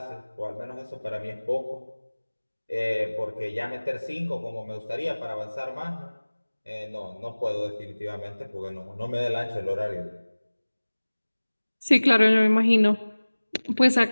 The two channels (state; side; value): inverted; both; correlation -1.00